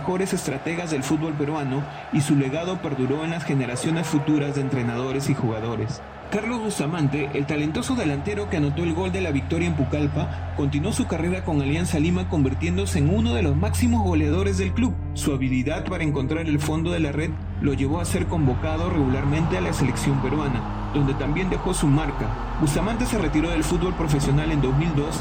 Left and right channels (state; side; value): identical; both; correlation 1.00